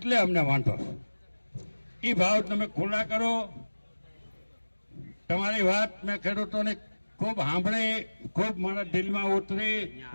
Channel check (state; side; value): inverted; both; correlation -1.00